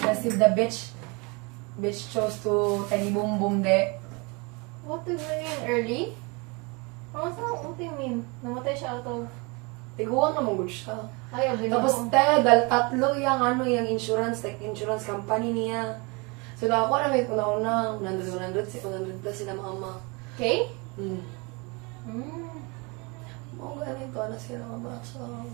the bitch chose to tiny boom boom de. What do you mean? Early? What do you mean? Namatay siya out of... Tiguan na mong siya. Ay, abin Tapos tatlo yung insurance, like insurance company niya. So ako na may una 100 plus sila mama. Okay? Hmm. Mm. Mga ganito na sila mama. So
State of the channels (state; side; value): quieter; left; 28.8 dB